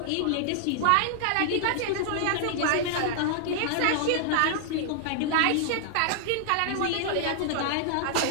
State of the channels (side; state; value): both; different; correlation -0.01